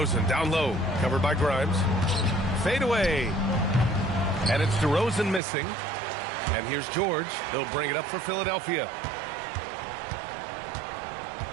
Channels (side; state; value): left; drops out; at 5.4 s